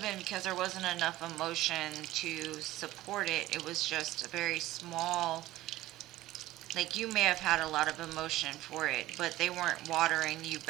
been because there wasn't enough emotion to support it. It was just a very small, like you may have had a lot of emotion for it, but they weren't watering you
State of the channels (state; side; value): quieter; left; 16.2 dB